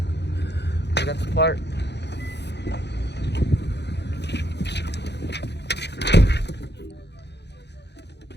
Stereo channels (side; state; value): right; late; 0.50 ms